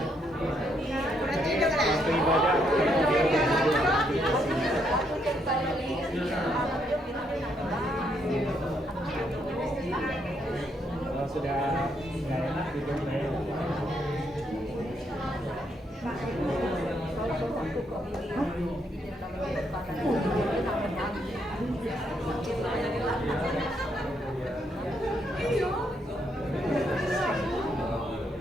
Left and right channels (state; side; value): normal; both; correlation 0.75